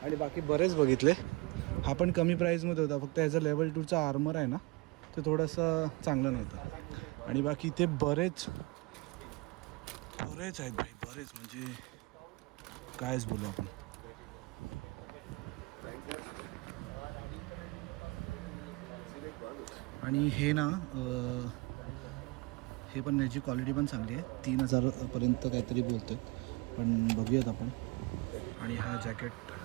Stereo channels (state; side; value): quieter; left; 25.0 dB